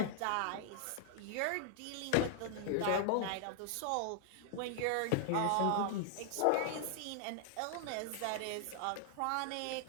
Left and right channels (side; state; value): both; different; correlation -0.01